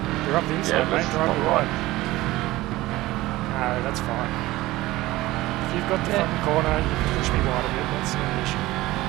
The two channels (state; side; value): quieter; left; 18.0 dB